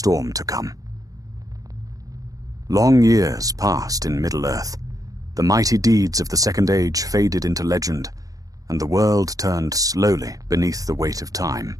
to come. Long years passed in Middle-earth. The mighty deeds of the Second Age faded into legend, and the world turned slowly beneath the weight of time.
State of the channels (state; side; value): late; left; 0.17 ms